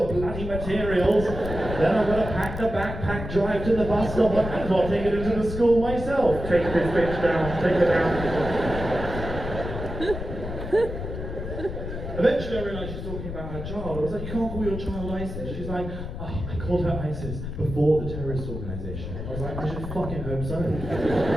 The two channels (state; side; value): noise; left; rumble, 7 dB below the sound